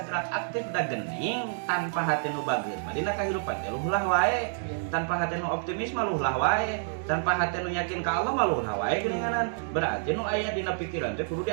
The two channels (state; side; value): silent; left; digital silence